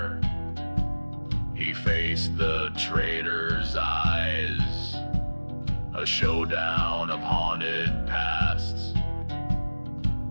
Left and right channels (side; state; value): both; inverted; correlation -1.00